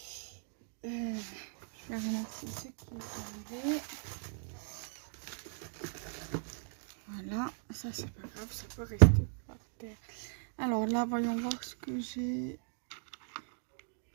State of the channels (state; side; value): silent; left; 53 dB below the other